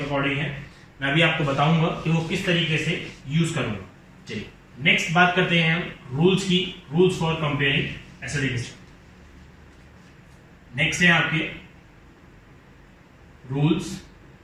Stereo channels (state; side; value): identical; both; correlation 1.00